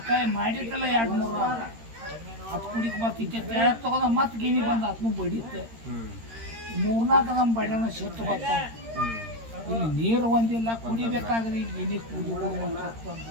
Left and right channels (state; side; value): late; left; 13 ms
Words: ಮಾಡಿದ್ದಲ್ಲ 2-3 ಅದು ಕುಡಿಕ್ ಬರ್ತೈತೆ ತಗೊಂಡ ಮತ್ತೆ ಗಿನಿ ಬಂದ ಅದನ್ನು ಬಡಿಯುತ್ತೆ 3-4 ನಮ್ಮ ಬಡಿನ ಶೆಟ್ಟು ಬರ್ತಾವೆ ಇಲ್ಲಿ ನೀರು ಒಂದಿಲ್ಲ ಕುಡಿಬೇಕಾದ್ರೆ ಈಗ ಗಿನಿ ಕುಡಿಯೋದಂತ